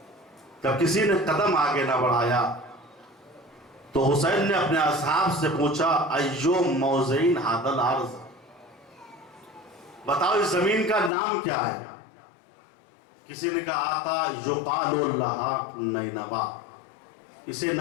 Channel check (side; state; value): right; drops out; at 11.1 s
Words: جب کسی نے قدم آگے نہ بڑھایا تو حسین نے اپنے اصحاب سے پوچھا، ایو موضعین ھذا الارض، بتاؤ اس زمین کا نام کیا ہے؟ کسی نے کہا آقا یقال لہا نینوا، اسے